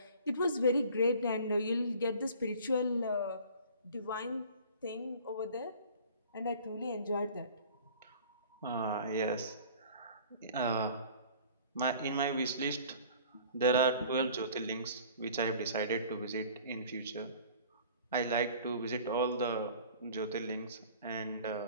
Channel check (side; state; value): both; inverted; correlation -0.47